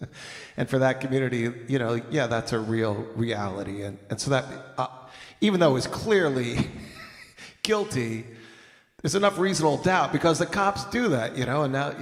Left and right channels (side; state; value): both; identical; correlation 1.00